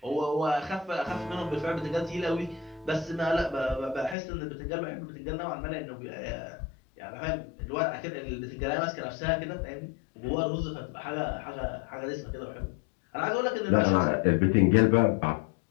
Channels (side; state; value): right; drops out; at 4.2 s